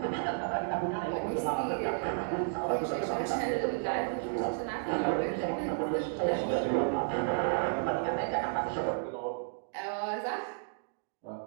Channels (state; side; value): silent; left; digital silence